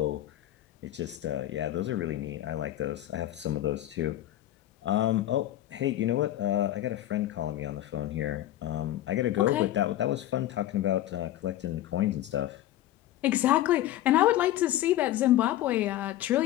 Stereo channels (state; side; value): quieter; right; 13.6 dB